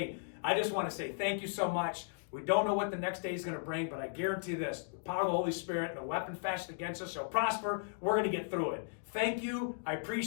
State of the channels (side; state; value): right; silent; digital silence